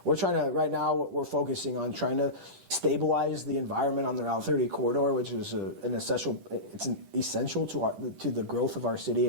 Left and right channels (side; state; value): left; late; 10 ms